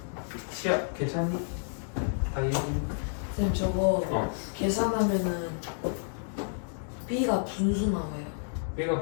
시야 괜찮니? 다이어리 쌤 저거 어. 계산하면은 B가 분수 나와요. B가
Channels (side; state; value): right; silent; digital silence